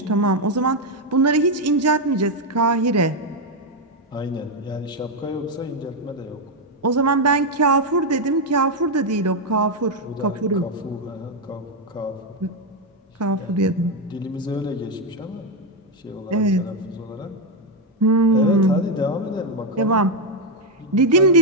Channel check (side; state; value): both; normal; correlation 0.04